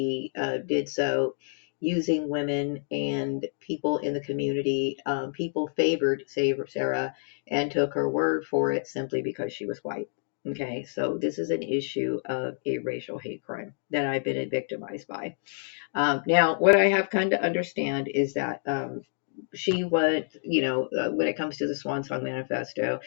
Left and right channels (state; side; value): silent; right; digital silence